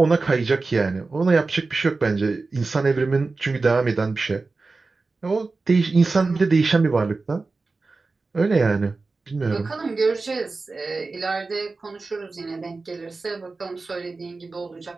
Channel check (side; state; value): left; quieter; 3.8 dB